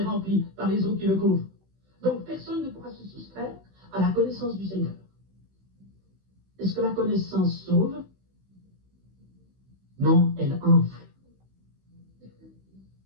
rempli par les eaux qui le couvrent. Donc personne ne pourra se soustraire à la connaissance du Seigneur. Est-ce que la connaissance sauve? Non, elle enfle.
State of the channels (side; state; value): left; late; 16 ms